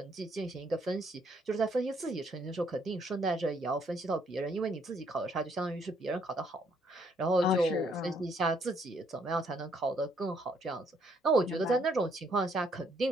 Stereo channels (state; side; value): normal; both; correlation 0.69